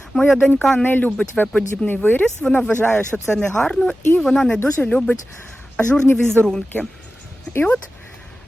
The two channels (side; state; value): both; normal; correlation 0.95